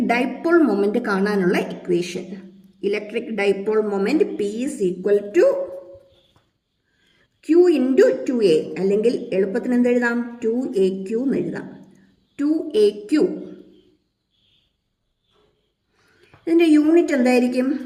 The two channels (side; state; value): both; identical; correlation 1.00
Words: ഡൈപോൾ മൊമെന്റ് കാണാനുള്ള equation. Electric dipole moment P is equal to Q into 2a, അല്ലെങ്കിൽ എളുപ്പത്തിന് എന്തെഴുതാം, 2aq എന്ന് എഴുതാം. 2aq. ഇതിൻ്റെ യൂണിറ്റ് എന്തായിരിക്കും?